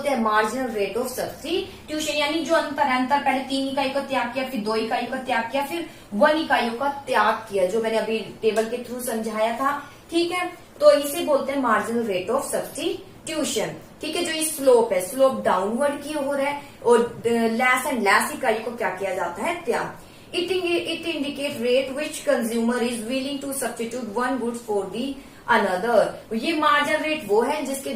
हैं, मार्जिनल रेट ऑफ सब्स्टिट्यूशन, यानी जो अंतर है, अंतर पहले 3 इकाई का त्याग किया, फिर 2 इकाइयों का त्याग किया, फिर 1 इकाइयों का त्याग किया, जो मैंने अभी टेबल के थ्रू समझाया था। ठीक है, तो इसे बोलते हैं मार्जिनल रेट ऑफ सब्स्टिट्यूशन। ठीक है, जो ये स्लोप है, स्लोप डाउनवर्ड की ओर है, और लेस एंड लेस इकाई को क्या किया जाता है, त्याग। It indicate rate which consumer is willing to substitute one goods for the another. ये मार्जिनल रेट वो है जिसके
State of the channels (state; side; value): identical; both; correlation 1.00